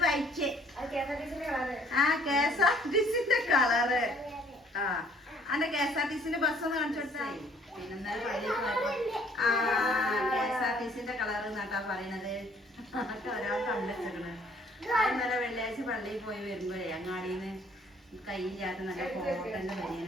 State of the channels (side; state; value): both; normal; correlation 0.59